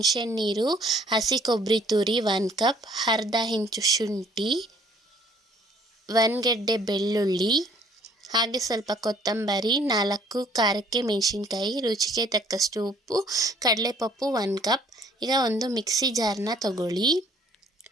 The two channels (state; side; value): normal; both; correlation 0.58